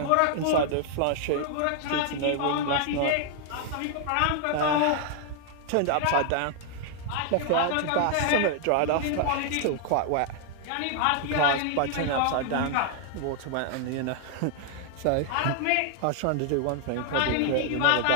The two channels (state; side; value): different; both; correlation 0.00